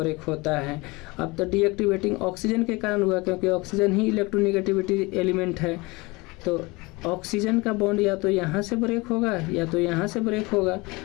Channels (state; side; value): quieter; right; 24.2 dB